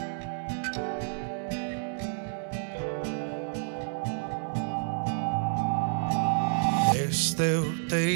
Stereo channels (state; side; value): silent; left; 58 dB below the other